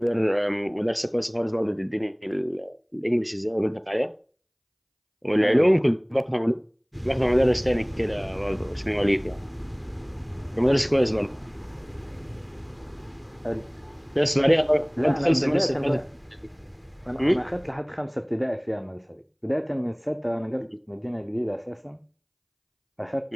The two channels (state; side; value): identical; both; correlation 1.00